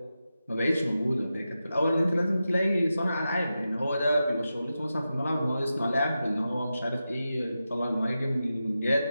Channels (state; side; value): inverted; both; correlation -0.91